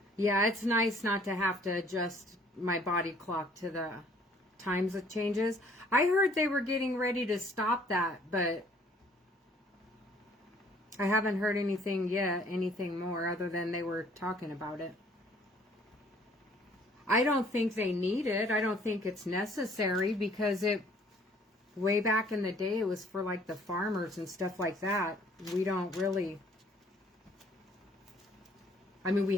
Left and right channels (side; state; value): both; normal; correlation 0.59